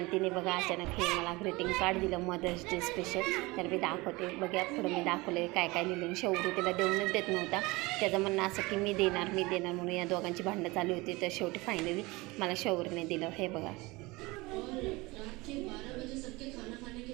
तिने बघा अचानक हे मला ग्रीटिंग कार्ड दिलं मदर्स डे स्पेशल. तर मी दाखवते बघा, पुढं मी दाखवले काय काय लिहिलं. शेवटी तिला देऊनच देत नव्हता. त्याचं म्हणणं असं की मी देणार म्हणून या दोघांची भांडणं चालू होती. तर शेवटी फायनली मला शौर्यने दिलं. हे बघा,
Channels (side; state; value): left; quieter; 22.9 dB